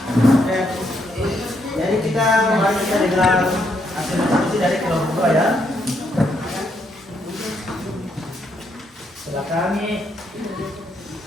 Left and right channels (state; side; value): normal; both; correlation 0.76